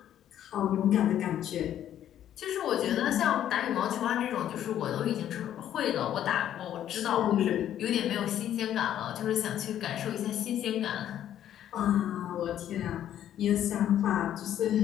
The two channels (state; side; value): quieter; right; 11.0 dB